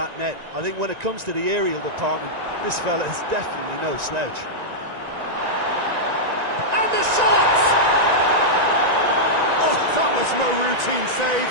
net. I think when it comes to the aerial department, this fella is definitely no slouch. And the shot! Oh, that was no routine save.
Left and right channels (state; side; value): late; left; 1.9 ms